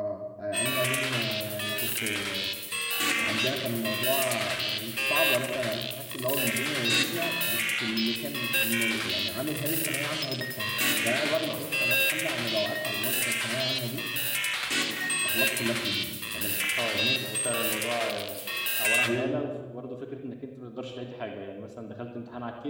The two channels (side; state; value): both; identical; correlation 1.00